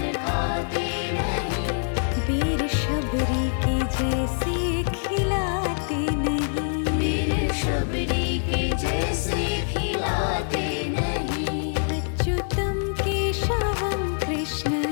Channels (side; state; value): right; silent; digital silence